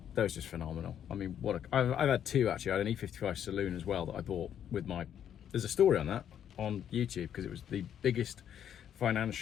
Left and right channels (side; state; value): right; quieter; 9.5 dB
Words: was just phenomenal. I mean, I've had two actually. I had an E55 saloon as well that I bought with my. There's a story on that on YouTube because it was the biggest